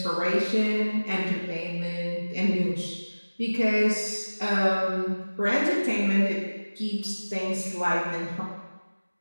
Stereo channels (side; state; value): both; inverted; correlation -1.00